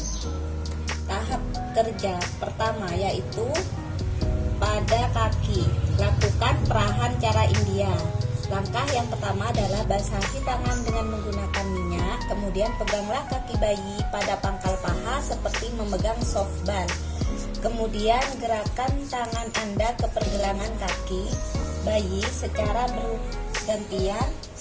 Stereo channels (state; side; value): identical; both; correlation 1.00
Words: Tahap kerja pertama yaitu pada kaki, lakukan perahan cara India. Langkah yang pertama adalah basahi tangan dengan menggunakan minyak, kemudian peganglah kaki bayi pada pangkal paha seperti memegang softball. Kemudian gerakan tangan Anda ke pergelangan kaki bayi secara bergantian